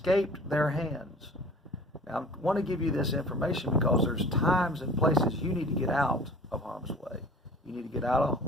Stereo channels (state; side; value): normal; both; correlation 0.45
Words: their hands. Now, I want to give you this information because there's times and places you need to get out of harm's way. You need to get out